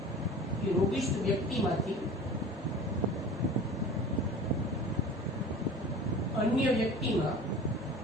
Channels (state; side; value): normal; both; correlation 0.39